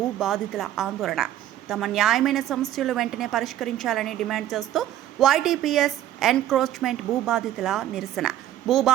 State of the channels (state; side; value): quieter; left; 12.4 dB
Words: బాధితుల ఆందోళన. తమ న్యాయమైన సమస్యలు వెంటనే పరిష్కరించాలని డిమాండ్ చేస్తూ వైటీపీఎస్ ఎన్క్రోచ్మెంట్ భూబాధితుల నిరసన.